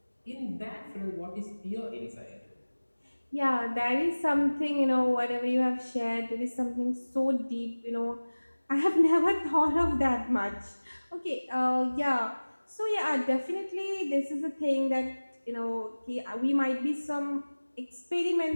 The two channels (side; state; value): both; inverted; correlation -1.00